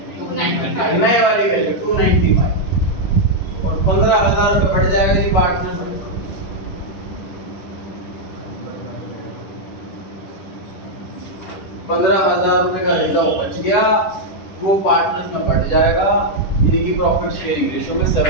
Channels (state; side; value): late; right; 10 ms